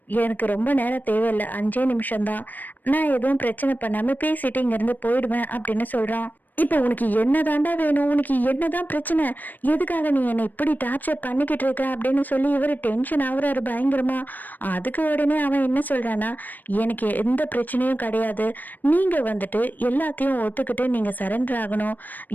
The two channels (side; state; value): right; late; 0.087 ms